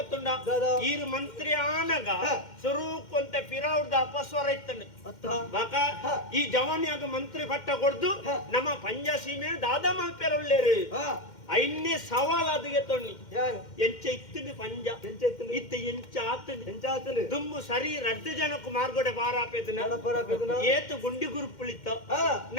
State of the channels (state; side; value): late; right; 2.1 ms